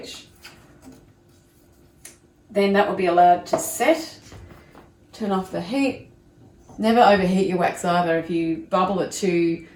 then that will be allowed to set. Turn off the heat. Never overheat your wax either. If you bubble it too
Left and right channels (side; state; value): both; identical; correlation 1.00